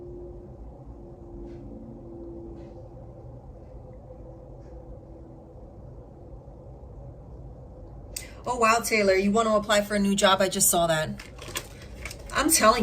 Oh, wow, Taylor, you want to apply for a new job? I just saw that. I'm telling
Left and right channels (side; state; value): both; identical; correlation 1.00